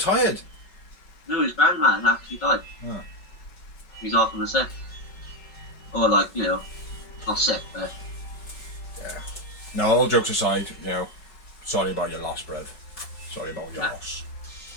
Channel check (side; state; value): right; late; 5.3 ms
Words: No, his grandma actually died. Oh. He's off on the sick. Or like, you know, not sick, but... Yeah. No, all jokes aside, you know, sorry about your loss, bruv. Sorry about your loss.